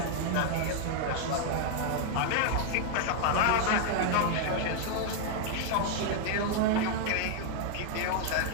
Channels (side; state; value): both; different; correlation 0.00